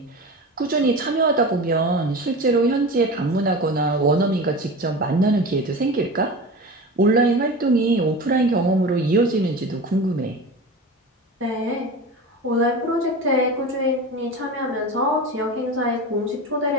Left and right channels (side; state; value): both; normal; correlation 0.30